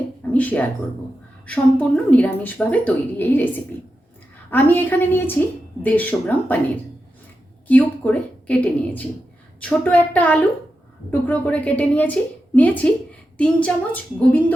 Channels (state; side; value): normal; both; correlation 0.89